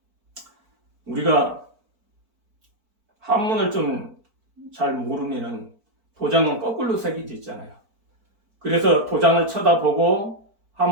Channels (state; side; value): late; left; 4.5 ms